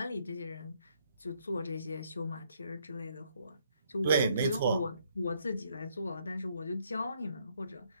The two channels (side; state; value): both; inverted; correlation -0.69